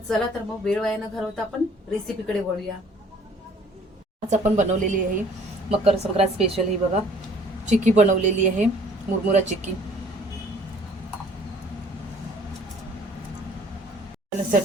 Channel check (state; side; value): normal; both; correlation 0.56